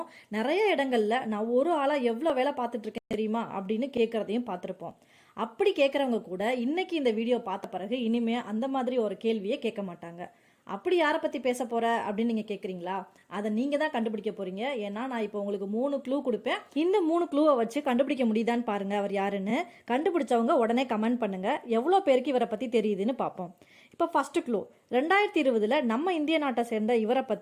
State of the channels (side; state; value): both; identical; correlation 1.00